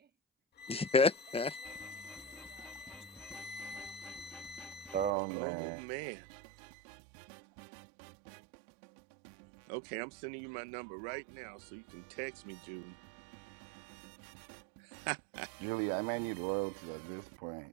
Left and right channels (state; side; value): drops out; left; at 5.1 s